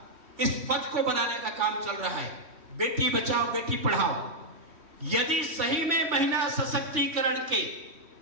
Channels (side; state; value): left; late; 3.1 ms